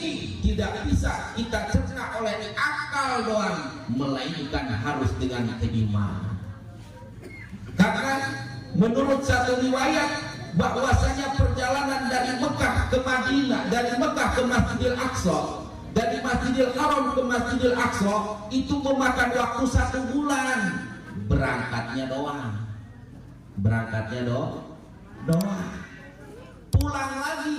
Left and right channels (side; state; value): both; identical; correlation 1.00